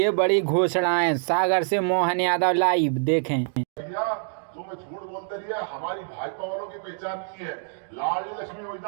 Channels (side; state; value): left; silent; digital silence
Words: बड़ी घोषणाएं, सागर से मोहन यादव लाइव देखें। भैया तुम झूठ बोलते रहिए, हमारी भाजपा वालों की पहचान की है। लाडली लक्ष्मी